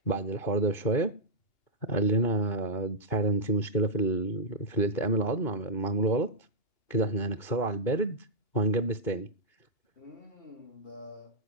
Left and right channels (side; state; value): right; late; 2.8 ms